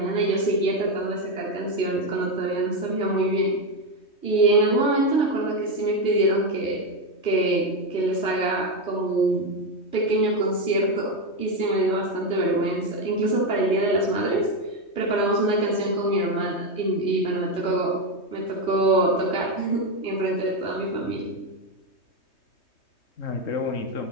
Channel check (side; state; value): right; late; 3.2 ms